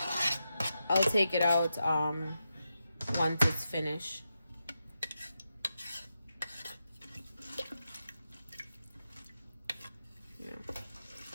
I'll take it out once it's finished. Yeah.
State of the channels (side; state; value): both; inverted; correlation -0.88